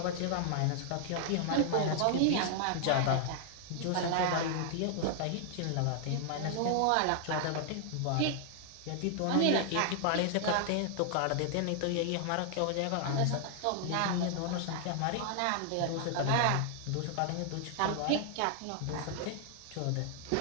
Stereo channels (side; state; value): both; different; correlation 0.00